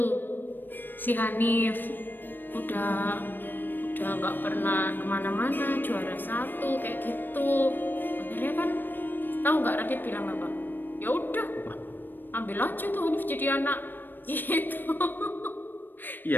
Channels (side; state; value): right; late; 0.093 ms